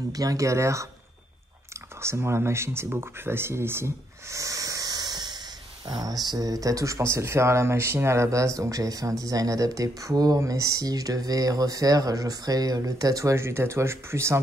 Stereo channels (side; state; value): both; normal; correlation 0.75